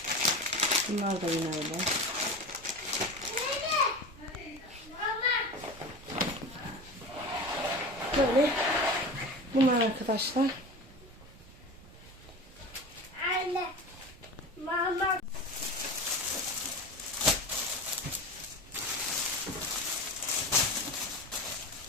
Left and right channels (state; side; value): normal; both; correlation 0.29